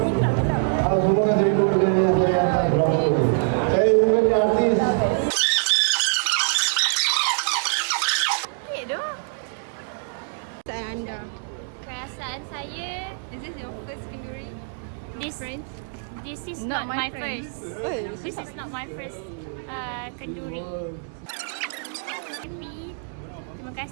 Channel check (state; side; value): silent; left; digital silence